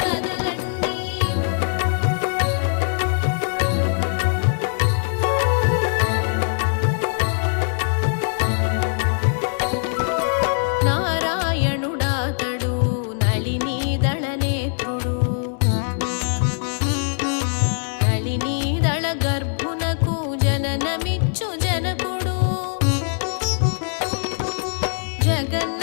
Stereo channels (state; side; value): silent; right; digital silence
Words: కదలండి నారాయణుడాతడు నళినీదళ నేత్రుడు నళినీదళ గర్భునకు జననమిచ్చు జనకుడు